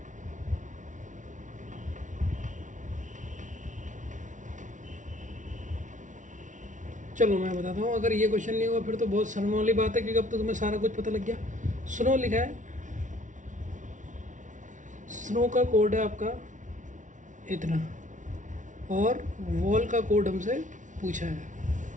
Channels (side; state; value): left; late; 0.37 ms